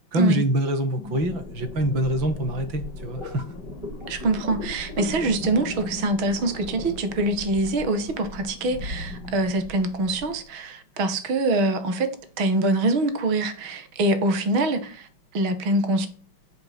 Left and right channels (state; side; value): late; left; 6.2 ms